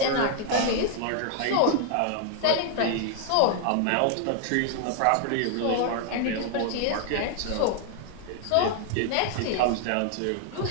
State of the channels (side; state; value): both; different; correlation 0.00